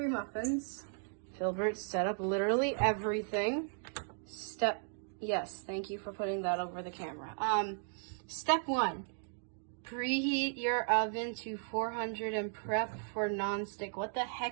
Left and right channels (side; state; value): left; silent; digital silence